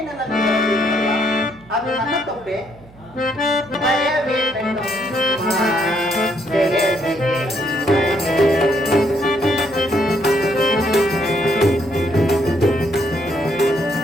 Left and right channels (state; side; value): noise; right; hum, 24 dB below the sound